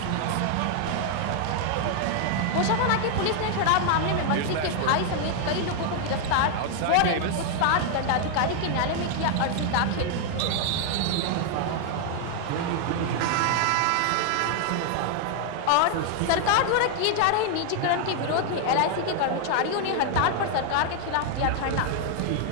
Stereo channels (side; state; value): both; different; correlation 0.00